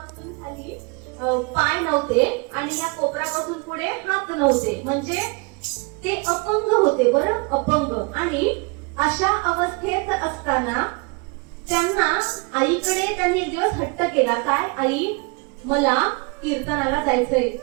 खाली पाय नव्हते आणि या कोपरापासून पुढे हात नव्हते, म्हणजे ते अपंग होते. बरं, अपंग. आणि अशा अवस्थेत असताना त्यांना आईकडे त्यांनी एक दिवस हट्ट केला. काय? आई, मला कीर्तनाला जायचंय.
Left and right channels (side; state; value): left; quieter; 29.7 dB